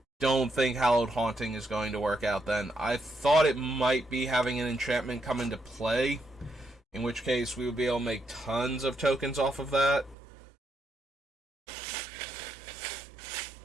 Don't think Hallowed Haunting is going to work out then. I thought it might be having an enchantment come into play, in which case we would be able to make tons of tokens off of that.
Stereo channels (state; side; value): drops out; left; at 10.2 s